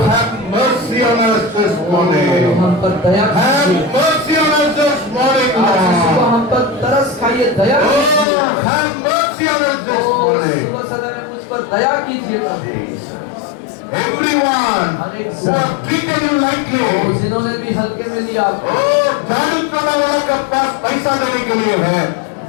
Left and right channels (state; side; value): drops out; right; at 8.2 s